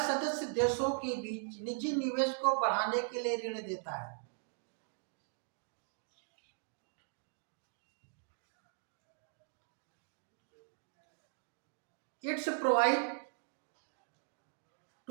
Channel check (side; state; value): left; silent; digital silence